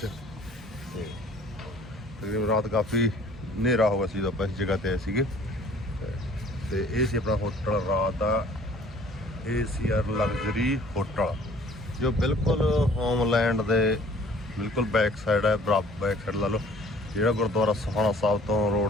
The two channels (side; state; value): both; normal; correlation 0.53